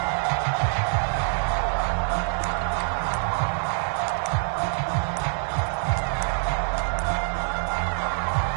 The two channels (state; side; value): silent; left; digital silence